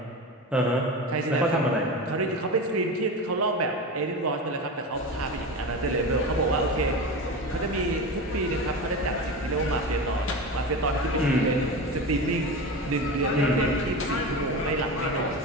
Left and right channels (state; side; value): normal; both; correlation 0.25